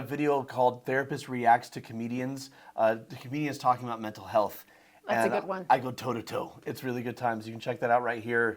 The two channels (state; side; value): identical; both; correlation 1.00